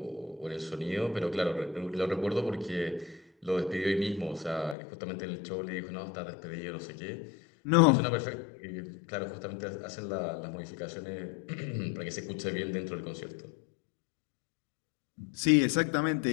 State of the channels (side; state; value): right; drops out; at 4.8 s